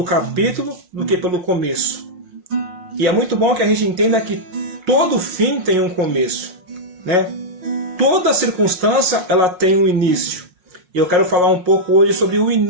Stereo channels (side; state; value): left; late; 5.6 ms